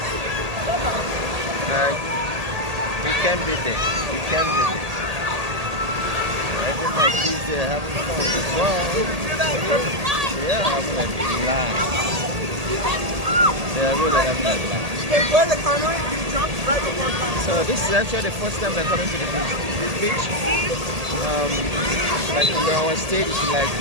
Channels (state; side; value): late; left; 1.8 ms